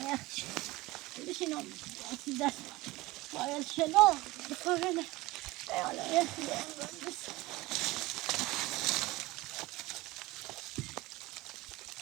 يا أخي ليش ينام أسدس ويا شلون بقولنا يا أخي بس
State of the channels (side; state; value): left; quieter; 20.2 dB